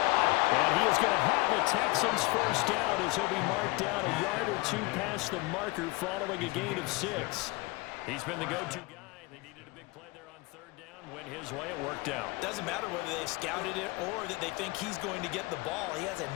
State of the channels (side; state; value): right; quieter; 23.0 dB